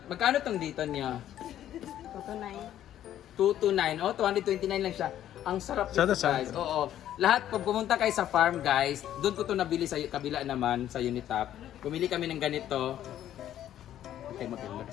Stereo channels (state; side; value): quieter; right; 11.6 dB